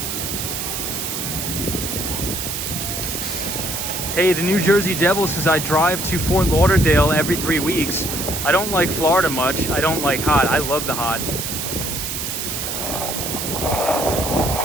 Hey, the New Jersey Devil says I drive to Fort Lauderdale every 3 weeks. I don't like Florida much. I don't like hot. I love the hot.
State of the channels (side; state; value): right; noise; hiss, 4 dB below the sound